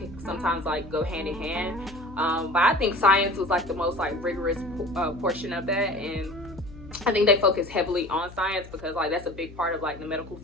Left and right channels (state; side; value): noise; left; hum, 17 dB below the sound